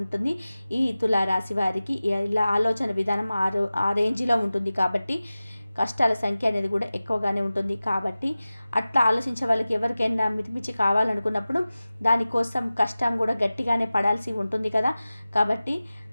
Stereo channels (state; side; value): inverted; both; correlation -0.96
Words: ఈ తులారాశి వారికి. ఇలా ఆలోచన విధానం ఆ రేంజ్లో ఉంటుంది. కాబట్టి కష్టాల సంఖ్య అనేది కూడా ఎక్కువగానే ఉంటుంది. కాబట్టి అట్లా ఆలోచించే వాళ్ళకి ఎవరికైనా మితిమించి కావాలనుకున్నప్పుడు దానికోసం కష్టం కూడా గట్టిగానే పడాల్సి ఉంటుంది కదా. కాబట్టి